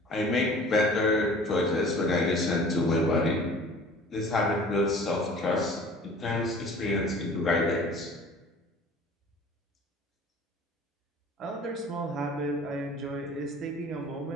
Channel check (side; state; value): both; normal; correlation 0.46